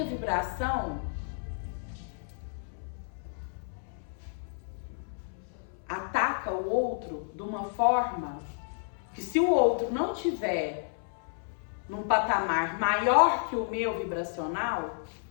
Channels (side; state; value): right; silent; 57 dB below the other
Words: vibração ataca o outro de uma forma que, se o outro não tiver num patamar maior que o meu vibracional,